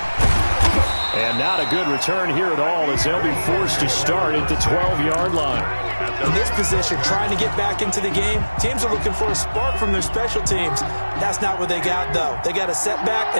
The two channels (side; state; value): both; inverted; correlation -1.00